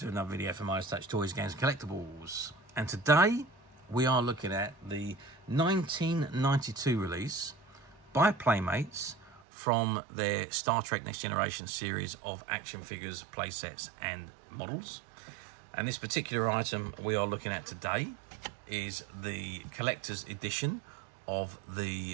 another video from Midas Touch Toys, Games, Collectibles. And today we are looking at the 1992 release by Playmates from their Star Trek Next Generation series of action figures, playsets and models. And this particular item we are looking at today is the collector's edition of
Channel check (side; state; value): left; drops out; at 9.4 s